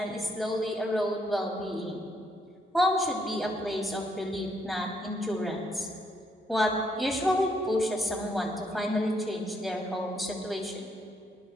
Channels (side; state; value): both; normal; correlation 0.73